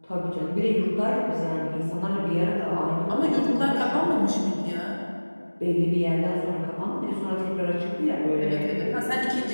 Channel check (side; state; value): both; inverted; correlation -1.00